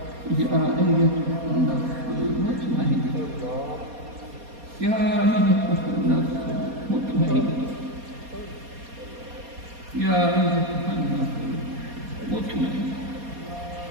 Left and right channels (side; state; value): left; late; 4.2 ms